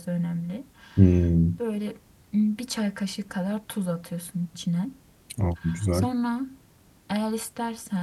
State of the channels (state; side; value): identical; both; correlation 1.00